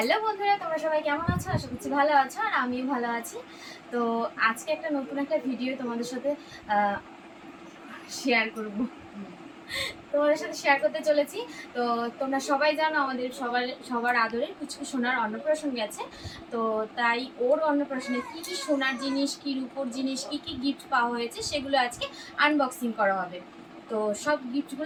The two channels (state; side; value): identical; both; correlation 1.00